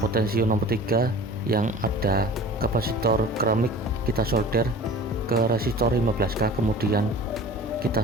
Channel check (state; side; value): normal; both; correlation 0.41